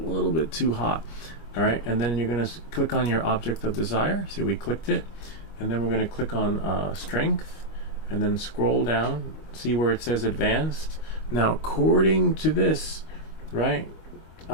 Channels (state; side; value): late; right; 25 ms